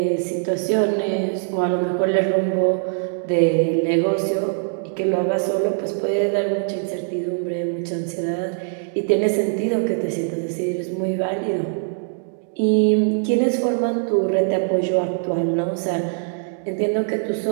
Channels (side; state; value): left; silent; digital silence